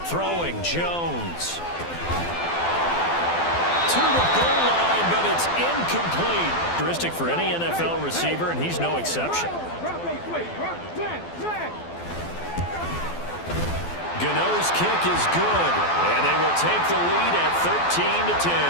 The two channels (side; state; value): right; late; 12 ms